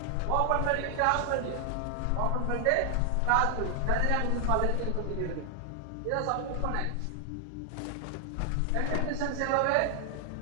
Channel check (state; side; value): different; both; correlation 0.00